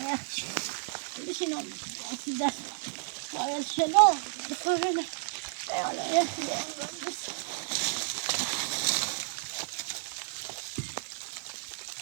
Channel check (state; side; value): silent; left; digital silence